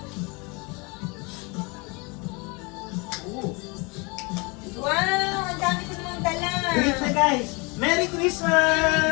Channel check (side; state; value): right; quieter; 28.8 dB